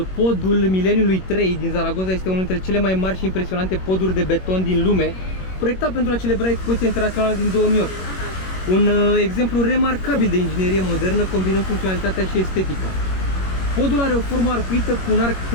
podul mileniului 3 din Zaragoza este unul dintre cele mai mari și impresionante poduri de beton din lume, proiectat pentru a celebra expoziția internațională din 2008. Un exemplu remarcabil de inginerie modernă, combinând funcționalitatea și estetica. Podul are o formă arcuită cu un arc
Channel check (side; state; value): right; late; 21 ms